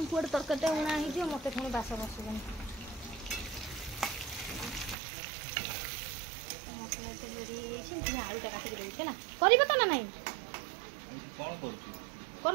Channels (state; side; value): drops out; left; at 5.0 s